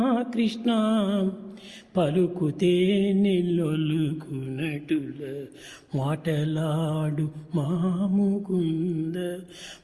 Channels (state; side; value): identical; both; correlation 1.00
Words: కృష్ణ పలుకుతే నిల్లొలుకునటుల మాటలాడు మాముకుంద